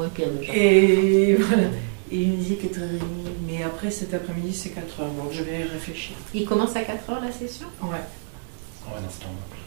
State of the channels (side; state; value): left; silent; digital silence